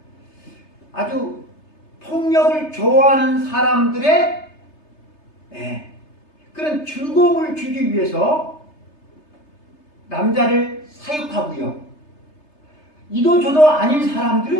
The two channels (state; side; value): late; right; 3.3 ms